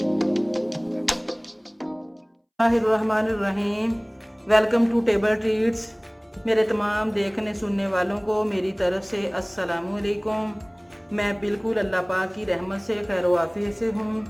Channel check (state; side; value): identical; both; correlation 1.00